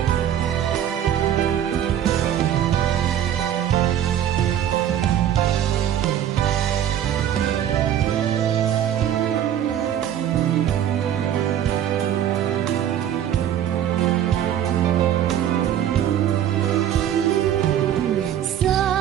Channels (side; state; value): left; quieter; 10.4 dB